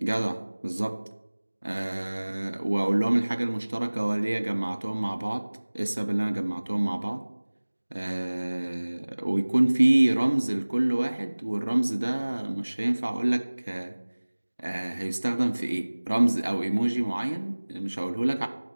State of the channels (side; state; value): both; inverted; correlation -1.00